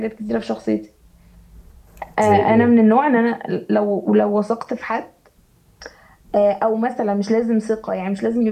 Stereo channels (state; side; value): identical; both; correlation 1.00